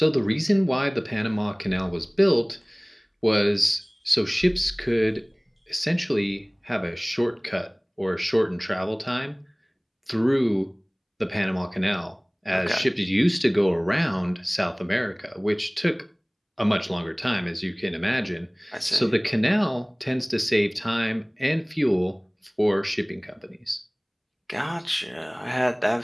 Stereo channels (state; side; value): identical; both; correlation 1.00